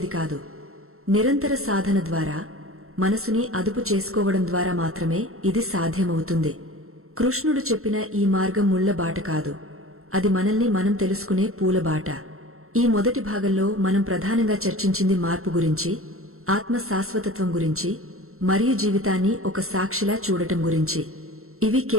కాదు. నిరంతర సాధన ద్వారా, మనసుని అదుపు చేసుకోవడం ద్వారా మాత్రమే ఇది సాధ్యమవుతుంది. కృష్ణుడు చెప్పిన ఈ మార్గం ముళ్ల బాట కాదు, అది మనల్ని మనం తెలుసుకునే పూలబాట. ఈ మొదటి భాగంలో మనం ప్రధానంగా చర్చించింది మార్పు గురించి, ఆత్మ శాశ్వతత్వం గురించి మరియు జీవితాన్ని ఒక సాక్షిలా చూడటం గురించి. ఇవి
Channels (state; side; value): late; left; 0.62 ms